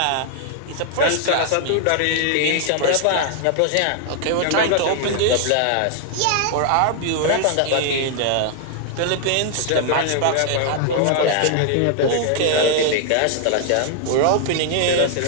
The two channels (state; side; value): different; both; correlation 0.00